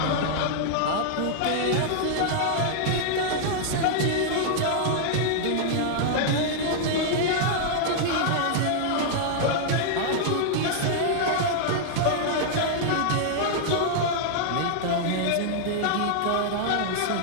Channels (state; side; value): different; both; correlation -0.01